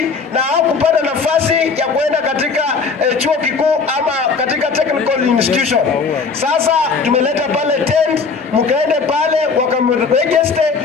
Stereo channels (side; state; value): right; quieter; 4.9 dB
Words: na hawakupata nafasi ya kuenda katika chuo kikuu ama katika technical institution. Sasa tumeleta pale tent, mkaende pale wakaregister